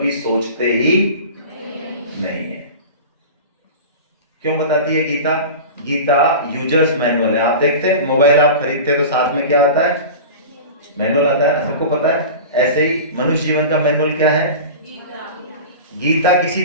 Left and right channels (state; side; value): inverted; both; correlation -0.32